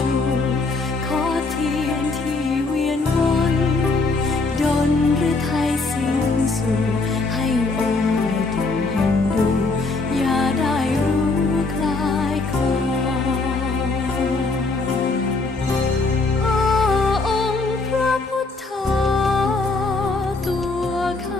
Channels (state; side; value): quieter; right; 3.6 dB